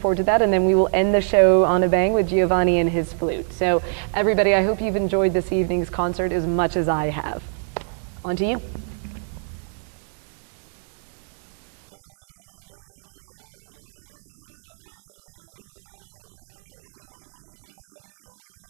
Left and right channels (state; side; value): silent; left; 64 dB below the other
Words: to that. And then we will end the show on a bang with Giovanni and his flute. So everybody, I hope you've enjoyed this evening's concert as much as I have. On to you.